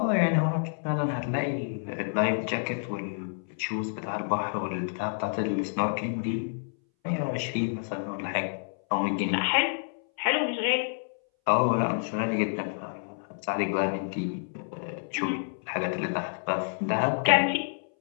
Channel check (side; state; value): right; silent; 59 dB below the other